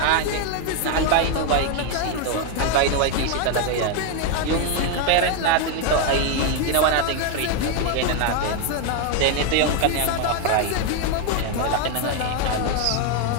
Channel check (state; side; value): different; both; correlation 0.01